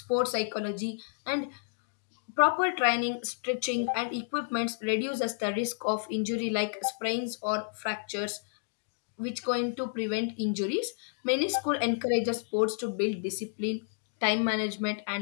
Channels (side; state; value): right; silent; digital silence